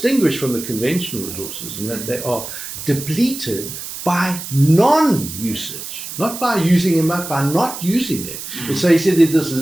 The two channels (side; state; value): right; noise; hiss, 9 dB below the sound